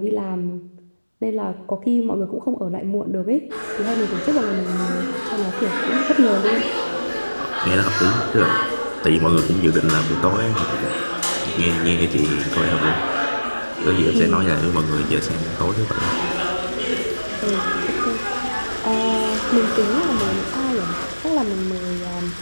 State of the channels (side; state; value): both; inverted; correlation -1.00